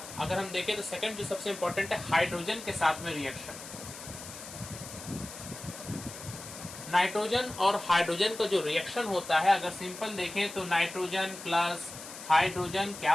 अगर हम देखें तो सेकंड जो सबसे इंपॉर्टेंट है हाइड्रोजन के साथ में रिएक्शन। नाइट्रोजन और हाइड्रोजन का जो रिएक्शन होता है, अगर सिंपल देखें तो नाइट्रोजन प्लस हाइड्रोजन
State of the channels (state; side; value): noise; left; hiss, 12 dB below the sound